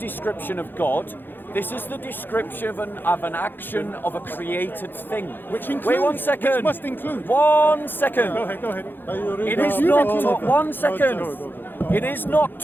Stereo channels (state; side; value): late; right; 0.096 ms